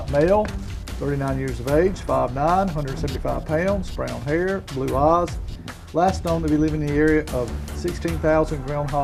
male, 39 years of age, 5'9", 175 pounds, brown hair, blue eyes. Last known to be living in the area of 16,000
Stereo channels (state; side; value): identical; both; correlation 1.00